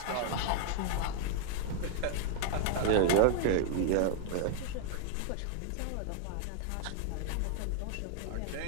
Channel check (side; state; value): both; different; correlation 0.00